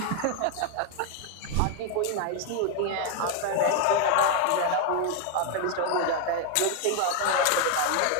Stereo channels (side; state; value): both; different; correlation 0.01